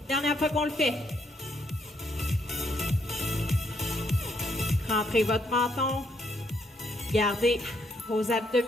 Dernière fois qu'on le fait. Rentrez votre menton. Gardez vos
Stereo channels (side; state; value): both; normal; correlation 0.73